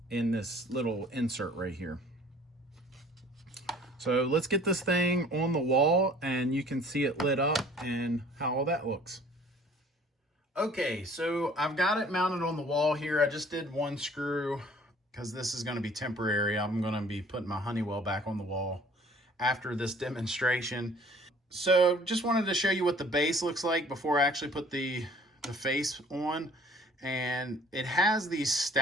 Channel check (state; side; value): normal; both; correlation 0.53